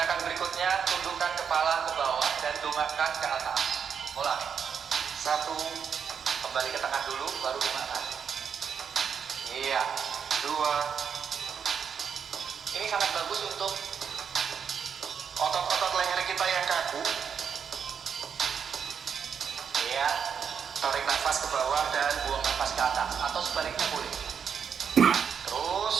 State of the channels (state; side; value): quieter; left; 7.1 dB